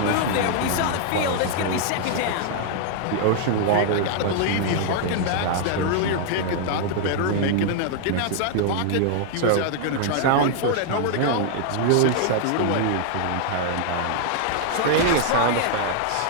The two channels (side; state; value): both; different; correlation 0.00